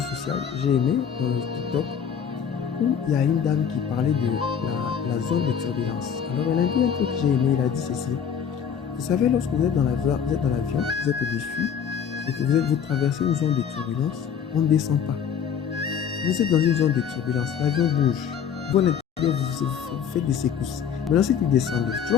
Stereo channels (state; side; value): quieter; right; 7.7 dB